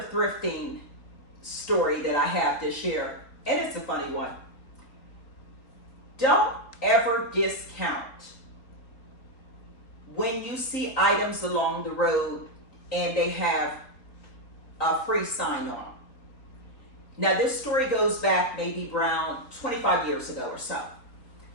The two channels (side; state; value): right; late; 3.9 ms